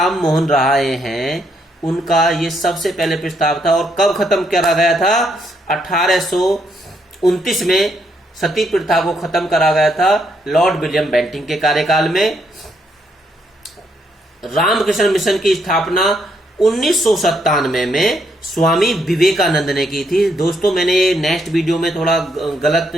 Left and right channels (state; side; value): normal; both; correlation 0.75